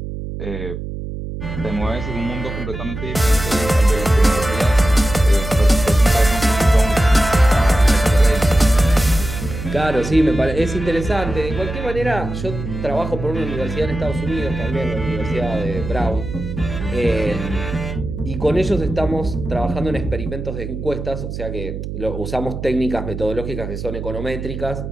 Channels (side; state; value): right; noise; hum, 7 dB below the sound